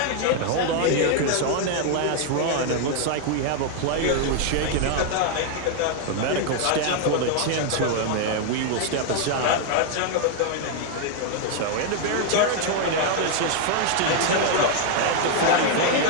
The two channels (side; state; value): both; different; correlation 0.00